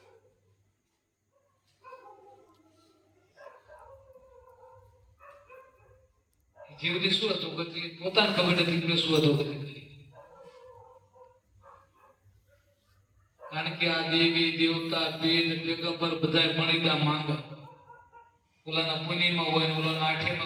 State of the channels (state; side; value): identical; both; correlation 1.00